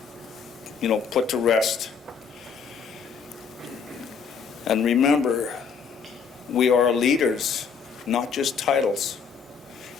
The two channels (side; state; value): right; quieter; 6.1 dB